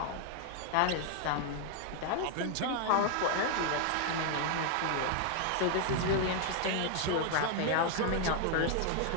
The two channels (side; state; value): both; different; correlation 0.00